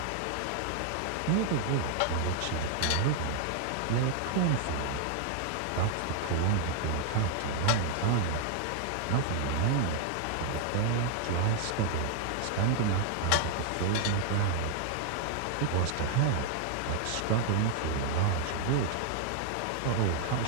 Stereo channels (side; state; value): both; different; correlation 0.00